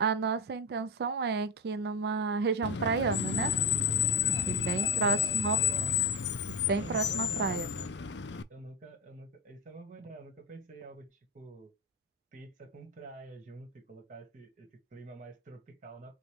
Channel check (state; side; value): normal; both; correlation 0.16